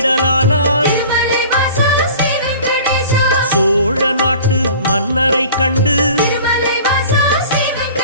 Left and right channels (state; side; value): inverted; both; correlation -0.44